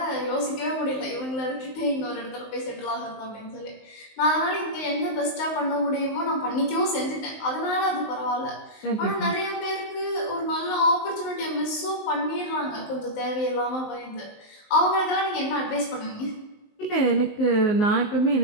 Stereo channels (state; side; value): late; right; 19 ms